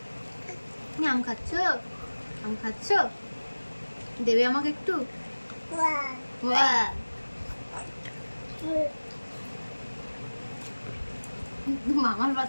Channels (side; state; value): both; inverted; correlation -1.00